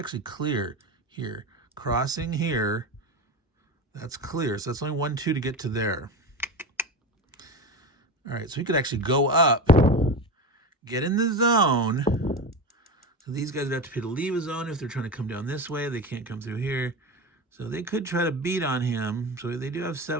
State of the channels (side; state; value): both; normal; correlation 0.23